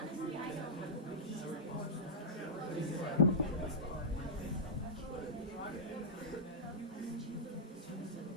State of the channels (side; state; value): both; normal; correlation -0.13